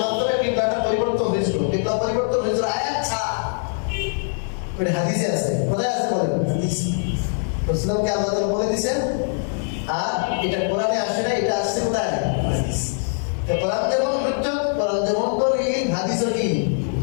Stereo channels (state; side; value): silent; right; 63 dB below the other